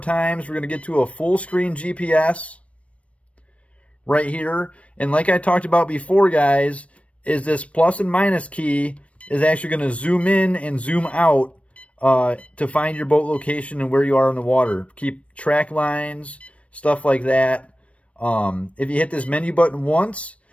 We're going to get to a full screen GPS right here. And like I talked about before, guys, is this plus and minus key is actually going to zoom in and zoom out to find your boat location and where you are in the water. Keep track lines, stuff like that. If you hit this menu button once,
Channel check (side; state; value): right; late; 0.063 ms